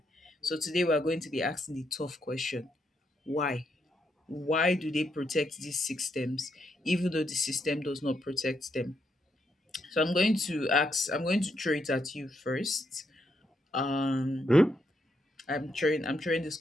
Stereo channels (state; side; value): normal; both; correlation 0.78